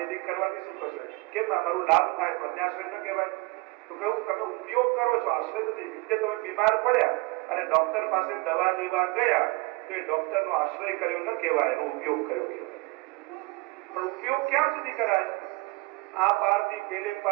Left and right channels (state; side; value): quieter; left; 24.1 dB